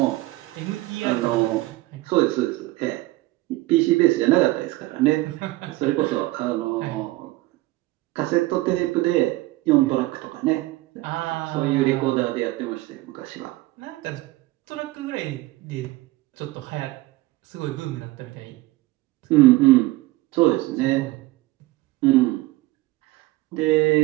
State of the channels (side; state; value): left; quieter; 19.1 dB